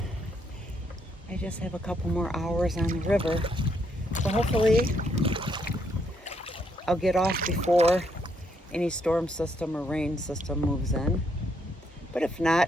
I just have a couple more hours on the river. So hopefully I'll get off before any storm system or rain system moves in. But if not,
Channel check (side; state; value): both; normal; correlation 0.74